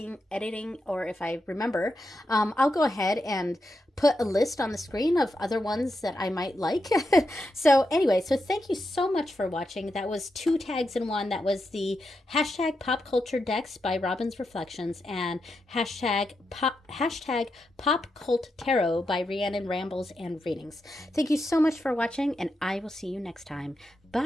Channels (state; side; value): normal; both; correlation 0.86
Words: or if I remember, I'll go ahead and put a list on the screen of other ones that I might like. So anyway, so thank you so much for watching. That was 2 tags in 1. That was the hashtag pop culture decks by Robin's Reflections and hashtag pop cult tarot by Rhiannon Rambles and Readings. Thank you so much for watching, and I will see you next time.